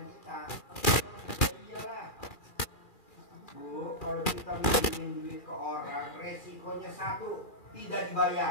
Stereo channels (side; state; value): right; late; 2.4 ms